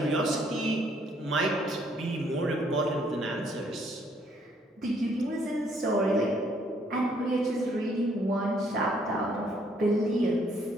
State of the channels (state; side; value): normal; both; correlation 0.67